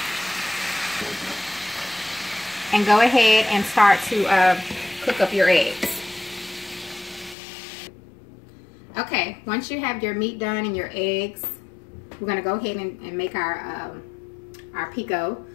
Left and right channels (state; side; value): drops out; right; at 7.4 s